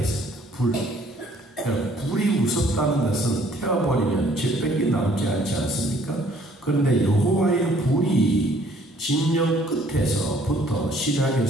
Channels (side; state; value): both; normal; correlation 0.60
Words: 불이 무섭다는 것은 태워버리면 재백이 남지 않지 않습니까? 그런데 여호와의 불이 진영 끝에서부터